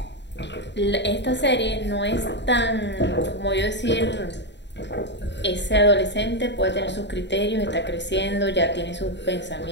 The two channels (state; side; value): late; right; 0.52 ms